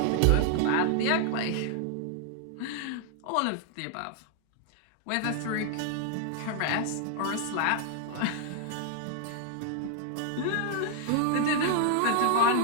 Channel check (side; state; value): both; different; correlation 0.00